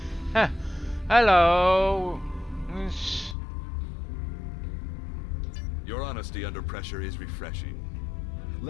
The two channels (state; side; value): drops out; right; at 3.4 s